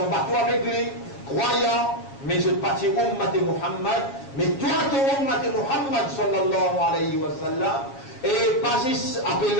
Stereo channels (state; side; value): late; right; 7.4 ms